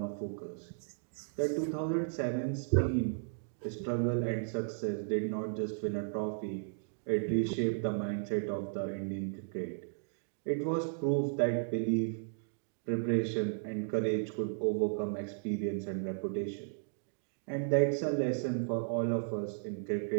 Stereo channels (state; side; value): silent; left; digital silence